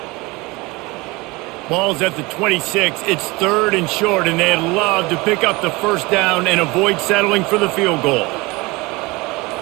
Ball's at the 26. It's 3rd and short, and they'd love to pick up the first down and avoid settling for the field goal.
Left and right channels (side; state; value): left; quieter; 23.5 dB